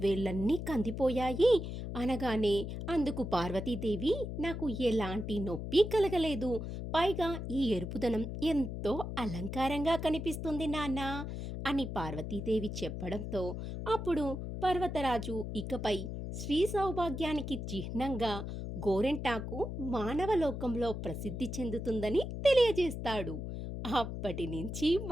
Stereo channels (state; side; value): noise; left; hum, 6 dB below the sound